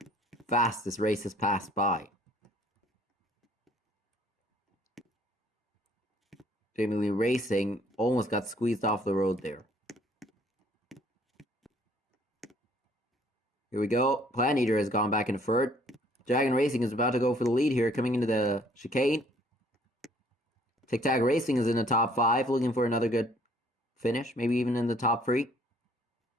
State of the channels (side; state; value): both; normal; correlation 0.60